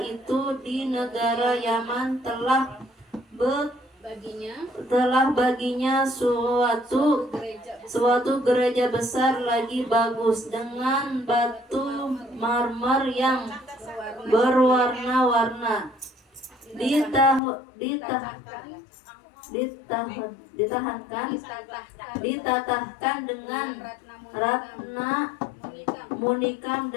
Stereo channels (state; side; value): drops out; right; at 17.4 s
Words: itu di negara Yaman telah baginya suatu gereja besar lagi bagus dengan batu marmer yang berwarna-warna, ditatahkan dengan ratna munikam